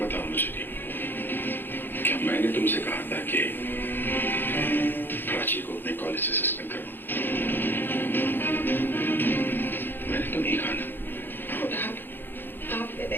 बताओ मुझे, क्या मैंने तुमसे कहा था कि प्राची को अपने कॉलेज से सस्पेंड करो? मैंने तो नहीं कहा ना। आपने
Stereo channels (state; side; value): late; right; 0.098 ms